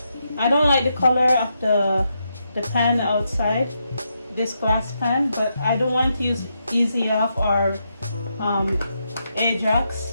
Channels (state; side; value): inverted; both; correlation -0.82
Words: don't like the color of the pan outside, this glass pan, but I don't want to use Easy Off or